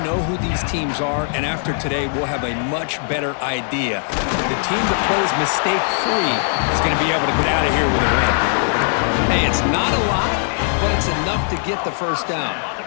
know who these teams are, and after today, we'll have a much better idea. The team that plays mistake-free is going to be able to get out of here with a win. Hey, it's not a lot, but it's enough to get the first down.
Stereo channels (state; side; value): silent; right; 64 dB below the other